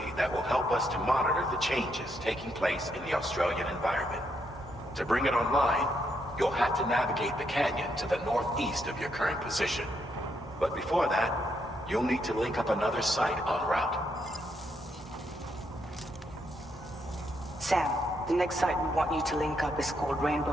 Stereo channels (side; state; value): both; normal; correlation 0.77